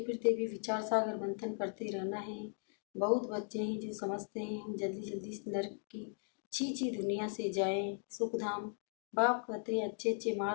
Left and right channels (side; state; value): right; silent; 53 dB below the other